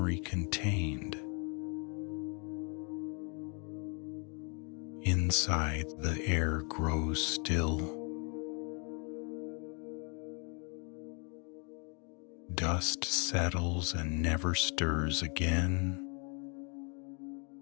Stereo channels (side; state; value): right; quieter; 35.6 dB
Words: contained. Inside, the air grows still. Dust settles and never stirs again.